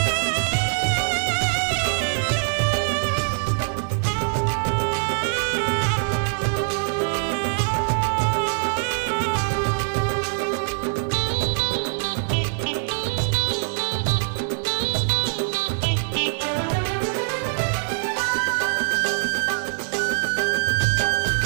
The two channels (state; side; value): silent; left; 60 dB below the other